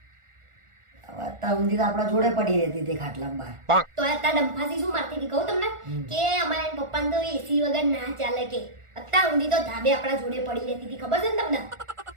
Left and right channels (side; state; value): left; late; 1.4 ms